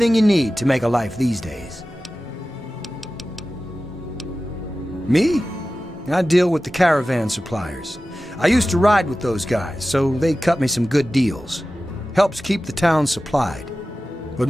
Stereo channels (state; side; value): normal; both; correlation 0.95